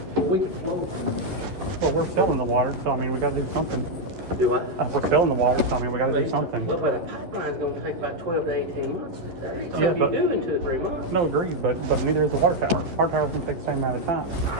We can flow. Well, we're selling the water, so I mean, we gotta do something. Do I? We're selling the water, so I mean, we gotta do something. Well, but a pipeline's gonna take about 12 to 18 months. That ain't Yeah, something you but- do in 2 or 3 months. No, agreed, but neither is the water tower. Our tower's gonna take the same amount of time.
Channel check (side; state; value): left; late; 11 ms